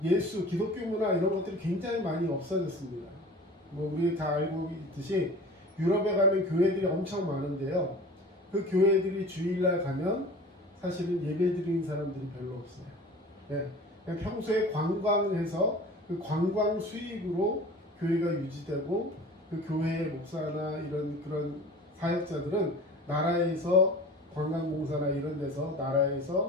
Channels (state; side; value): normal; both; correlation 0.40